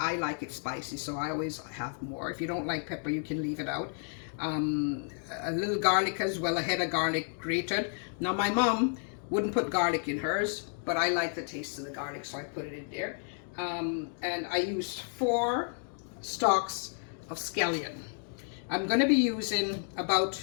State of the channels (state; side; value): silent; right; 57 dB below the other